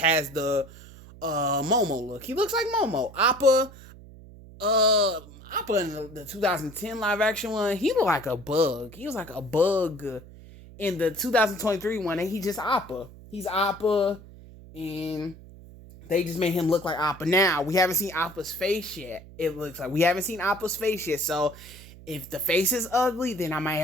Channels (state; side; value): noise; right; hum, 19 dB below the sound